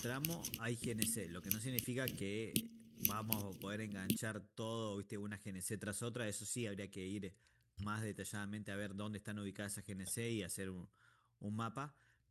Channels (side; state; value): both; identical; correlation 1.00